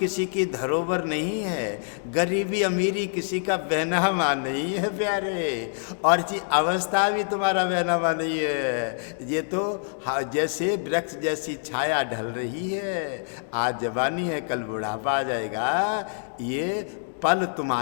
की धरोहर नहीं है, गरीबी अमीरी किसी का बहनामा नहीं है प्यारे, और जी अवस्था भी तुम्हारा बहनामा नहीं है। ये तो जैसे वृक्ष जैसी छाया ढल रही है, आज जवानी है, कल बुढ़ापा आ जाएगा। ये पल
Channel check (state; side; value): silent; right; digital silence